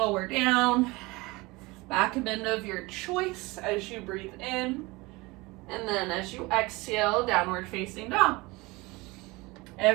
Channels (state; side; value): quieter; left; 23.2 dB